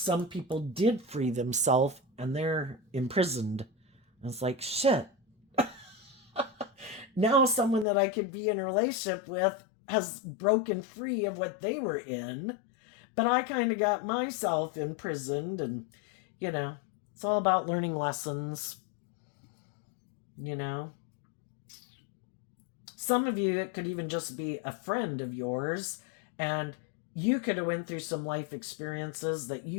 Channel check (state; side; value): drops out; right; at 7.9 s